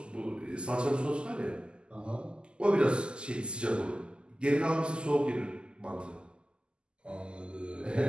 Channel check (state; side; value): late; left; 0.049 ms